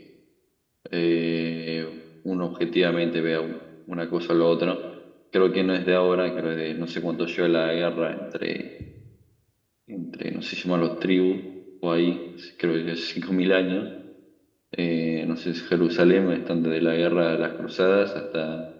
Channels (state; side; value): identical; both; correlation 1.00